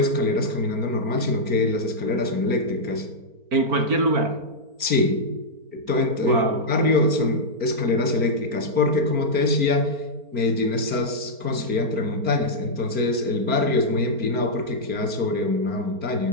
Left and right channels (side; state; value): left; late; 4.4 ms